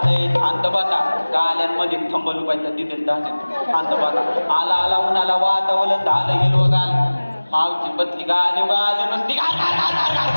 शांत बसा गाल्यांमध्ये थंबल पाहिजे तिथे जाते शांत बसा आला आला उन्हाला वातावलं झालं हिरवगाल मावची बदली गाली गाली नुसती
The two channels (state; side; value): inverted; both; correlation -1.00